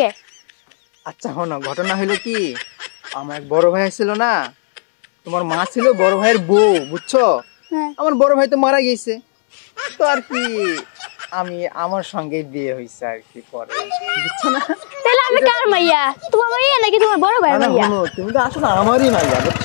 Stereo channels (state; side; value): silent; right; 69 dB below the other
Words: আচ্ছা শোনো ঘটনা হলো কি আমার এক বড় ভাই ছিল না তোমার মা ছিল বড় ভাইয়ের বউ বুঝছো আমার বড় ভাই তো মারা গেছে তো আর কি আমি আমার সঙ্গে বিয়ে হইছে আর কি পরে বুঝছো না তাহলে আমি কার মাইয়া তোমার মাইয়া নাকি তোমার বড় ভাই মাইয়া না শোনো তুমি তো আসলে আমারই মাইয়া